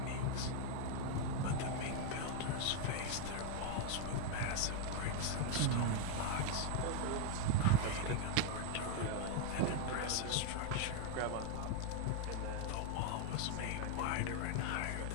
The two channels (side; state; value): both; different; correlation 0.00